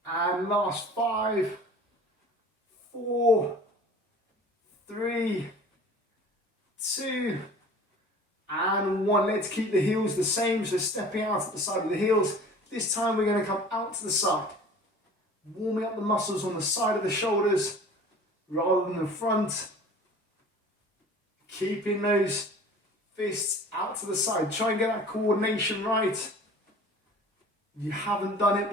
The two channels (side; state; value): both; normal; correlation 0.44